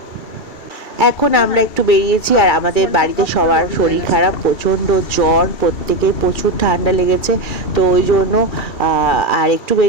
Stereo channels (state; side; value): late; right; 2.3 ms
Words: এখন আমরা একটু বেরিয়েছি, আর আমাদের বাড়িতে সবার শরীর খারাপ, প্রচণ্ড জ্বর, প্রত্যেকের প্রচুর ঠান্ডা লেগেছে। তো ওই জন্য আর একটু